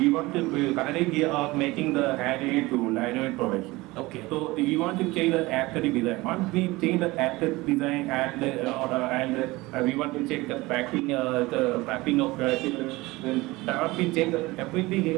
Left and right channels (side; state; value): left; quieter; 21.1 dB